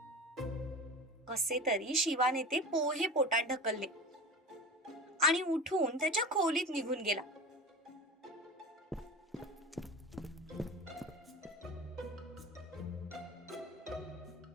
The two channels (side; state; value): both; normal; correlation 0.31